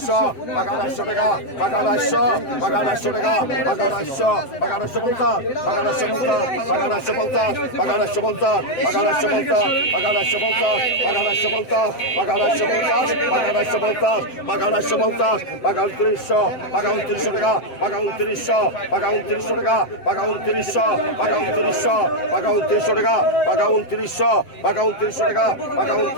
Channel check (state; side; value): late; right; 7.7 ms